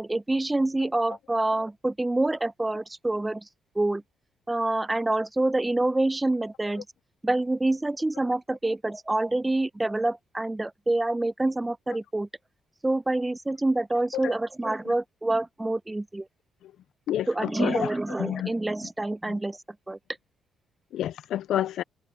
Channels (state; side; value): normal; both; correlation 0.95